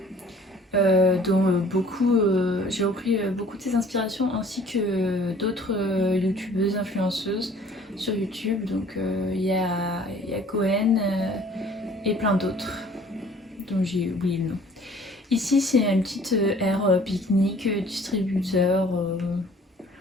dont j'ai repris beaucoup de ses inspirations, ainsi que d'autres youtubeuses influenceuses sur YouTube. Donc il y a Cohen et plein d'autres dont j'ai oublié le nom. Ici c'est une petite aire pique-nique, distributeur,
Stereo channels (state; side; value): normal; both; correlation 0.52